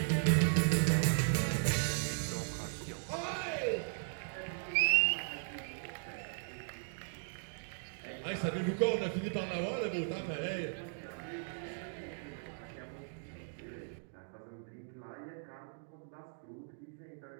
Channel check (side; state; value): left; silent; digital silence